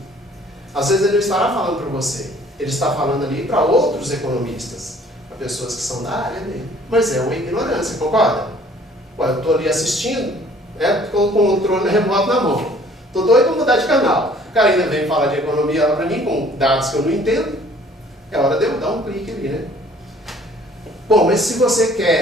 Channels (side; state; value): both; normal; correlation 0.55